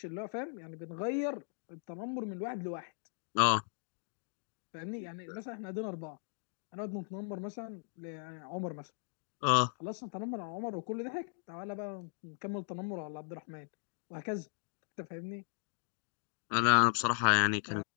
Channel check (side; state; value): right; silent; digital silence